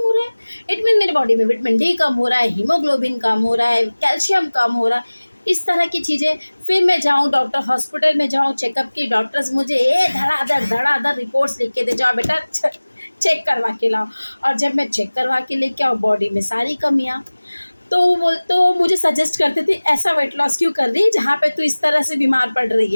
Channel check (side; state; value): both; inverted; correlation -1.00